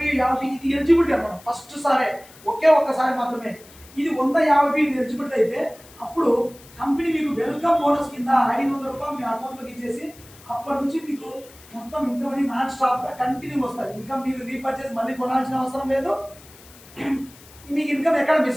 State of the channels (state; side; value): noise; left; hiss, 23 dB below the sound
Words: 50 ఇది ఎలిజిబిలిటీ అనమాట, ఫస్ట్ సారే ఒకే ఒక్కసారి మాత్రమే. ఇది 100 50 PV ఎలిజిబిలిటీ అయితే అప్పుడు కంపెనీ మీకు వెల్కమ్ బోనస్ కింద 500 రూపాయలు మీ అకౌంట్లోకి ఇచ్చేసి అప్పటి నుంచి మీకు మొత్తం ఇన్కమ్ అని నాన్ స్టాప్గా కంటిన్యూ వస్తుంది. ఇన్కమ్ మీరు రీపర్చేస్ మళ్ళీ కొనాల్సిన అవసరం లేదు, మీకు ఇన్కమ్ ఎక్కడ